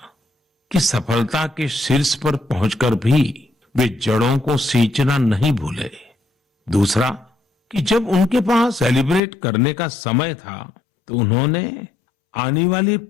कि सफलता के शीर्ष पर पहुंचकर भी वे जड़ों को सींचना नहीं भूले। दूसरा कि जब उनके पास सेलिब्रेट करने का समय था तो उन्होंने आने वाली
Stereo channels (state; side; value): drops out; right; at 9.2 s